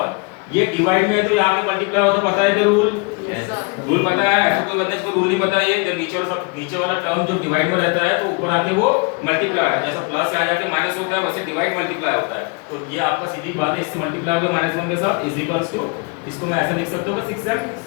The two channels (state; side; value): quieter; right; 31.4 dB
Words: ये डिवाइड में है तो यहां पे मल्टीप्लाई होता, पता है कि रूल, रूल पता है? तो कोई बंदे को रूल नहीं पता है, जब नीचे वाला टर्म जो डिवाइड में रहता है तो ऊपर आके वो मल्टीप्लाई, जैसा प्लस से आ जाके माइनस होता है वैसे डिवाइड मल्टीप्लाई होता है। तो ये आपका सीधी बात है, इससे मल्टीप्लाई होगा -1 के साथ इज इक्वल्स टू, इसको मैं ऐसे लिख सकता हूं 6m,